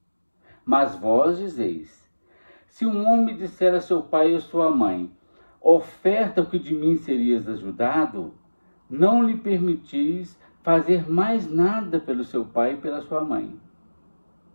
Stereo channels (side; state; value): both; inverted; correlation -1.00